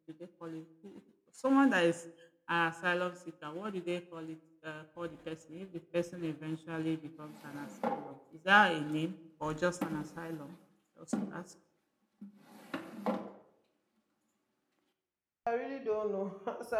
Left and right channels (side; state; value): both; identical; correlation 1.00